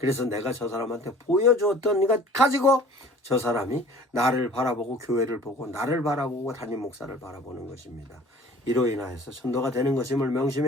내가 저 사람한테 보여주었던 것 가지고 저 사람이 나를 바라보고 교회를 보고 나를 바라보고 담임 목사를 바라보는 것입니다. 이로 인하여서 전도가 되는 것임을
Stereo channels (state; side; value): normal; both; correlation 0.48